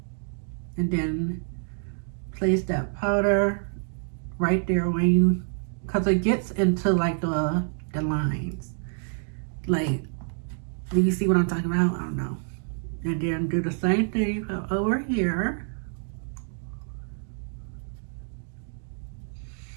and then place that powder right there because it gets into like the lines. Like, do you see what I'm talking about? I don't know. And then do the same thing over here.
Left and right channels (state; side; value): silent; left; 56 dB below the other